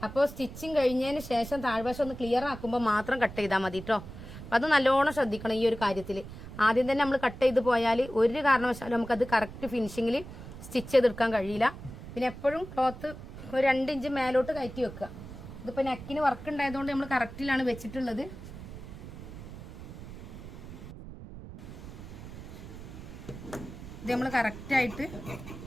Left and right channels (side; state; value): right; noise; rumble, 13 dB below the sound